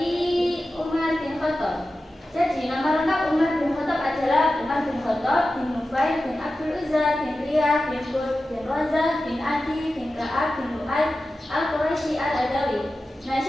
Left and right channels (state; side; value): normal; both; correlation 0.93